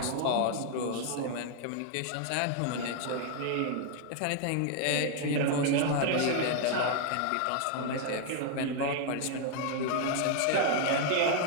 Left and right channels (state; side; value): different; both; correlation 0.00